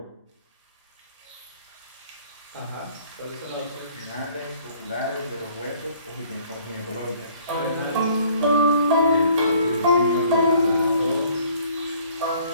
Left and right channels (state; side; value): inverted; both; correlation -0.57